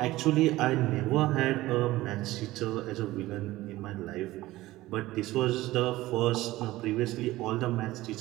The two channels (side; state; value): left; quieter; 17.4 dB